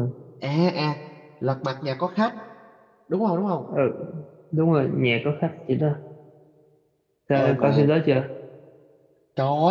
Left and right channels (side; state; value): both; identical; correlation 1.00